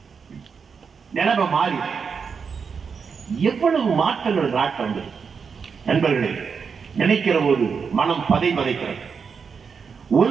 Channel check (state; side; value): quieter; left; 5.9 dB